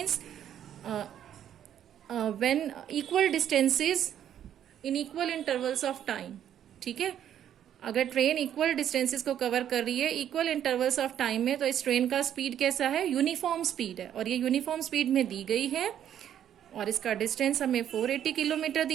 when equal distances in equal intervals of time. ठीक है, अगर ट्रेन इक्वल डिस्टेंसेस को कवर कर रही है इक्वल इंटरवल्स ऑफ टाइम में, तो इस ट्रेन का स्पीड कैसा है, यूनिफॉर्म स्पीड है, और ये यूनिफॉर्म स्पीड में दी गई है, और इसका डिस्टेंस हमें 480 किलोमीटर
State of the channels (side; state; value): left; quieter; 10.2 dB